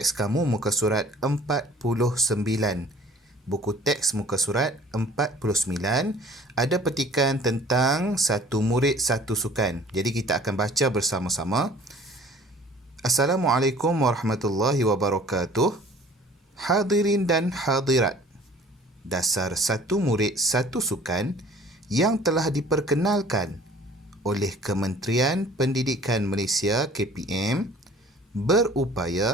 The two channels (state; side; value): normal; both; correlation 0.50